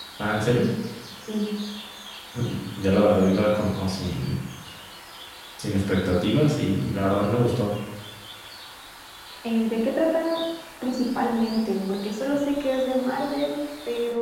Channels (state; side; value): identical; both; correlation 1.00